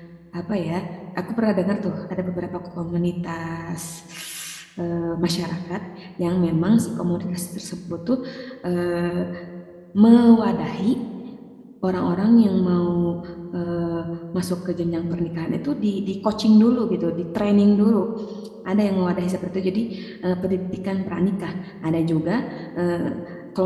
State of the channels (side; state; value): both; identical; correlation 1.00